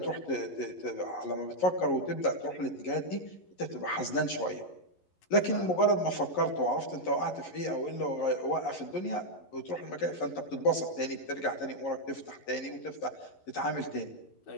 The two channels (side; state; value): right; late; 11 ms